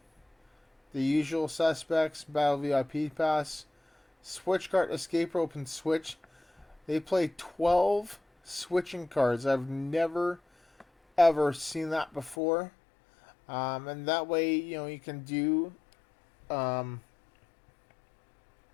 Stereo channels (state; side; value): drops out; right; at 12.4 s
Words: The Usual Suspects, Battle VIP Pass, Switch Card, Escape Rope, and Switch. They play 12 switching cards. I've never, ever seen that before. And that way, you can do,